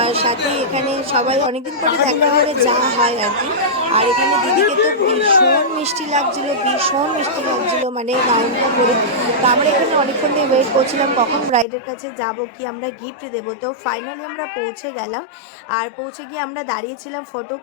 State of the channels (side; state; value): right; drops out; at 11.7 s